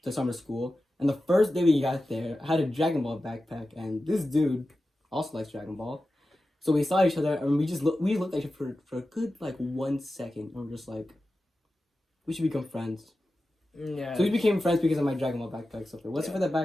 summer school, and the first day we got there, I had a Dragon Ball backpack, and this dude also likes Dragon Ball. So we saw each other, and we looked at each other for a good like 1 second, and we're just like, we should become friends. Yeah. So we became friends because of my Dragon Ball backpack. So if it wasn't for that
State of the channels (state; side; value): normal; both; correlation 0.93